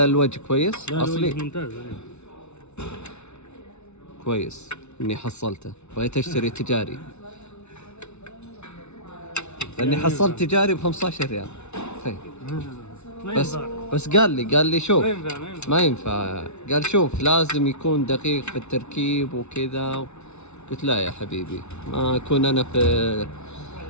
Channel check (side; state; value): right; late; 0.81 ms